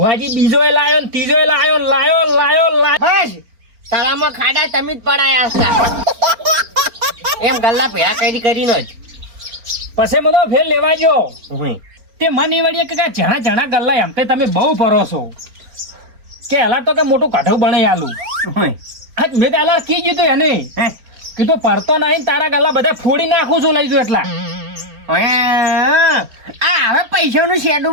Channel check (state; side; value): late; left; 4.4 ms